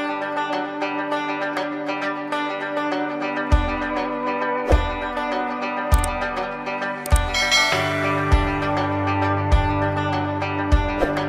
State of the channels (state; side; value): identical; both; correlation 1.00